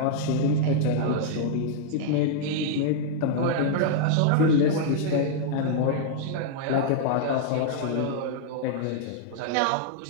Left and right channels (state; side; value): different; both; correlation -0.01